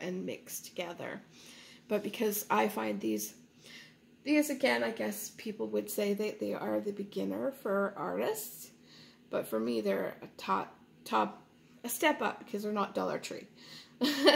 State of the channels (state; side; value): identical; both; correlation 1.00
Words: mix together. But because I find these again, I guess people would say that they are the beginner for artists. But for me, they're a step up because they're not Dollar Tree.